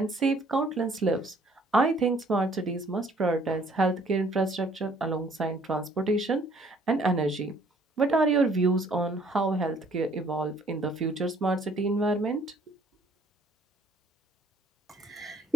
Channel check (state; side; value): normal; both; correlation 0.62